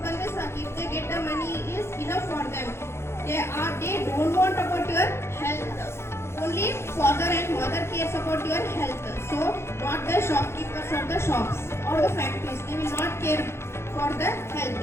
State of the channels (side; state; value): right; late; 0.12 ms